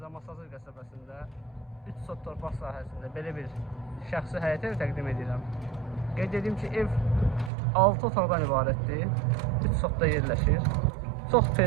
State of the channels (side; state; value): left; drops out; at 7.5 s